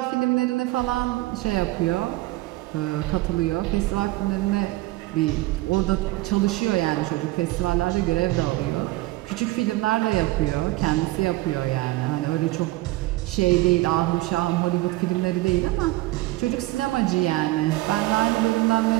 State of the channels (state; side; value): quieter; left; 19.0 dB